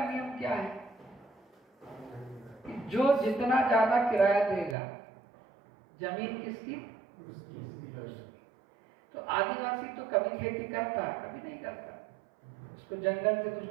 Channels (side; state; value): left; drops out; at 4.8 s